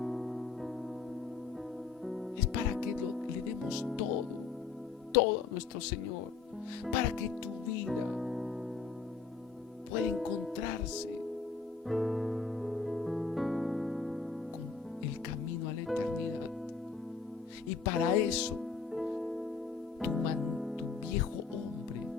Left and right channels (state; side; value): quieter; right; 5.1 dB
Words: es para que le demos todo a nuestro Señor, para que tu vida pueda encontrarse con el camino a la eternidad. Y para eso tu viejo hombre